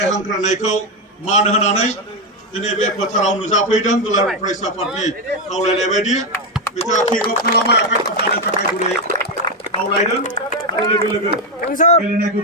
हांख्रायनायखौ मान होनानै दिनै बे फोथाराव नुजाफैदों दुलाराय फरायसा आफादनि खावलायनाय बायदि बिथाङा किक अफ खालामबाय आखाइ खबजानो थाखाय गुरै खावलायदों आरो लोगो लोगो गेलेनायखौ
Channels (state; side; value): normal; both; correlation 0.07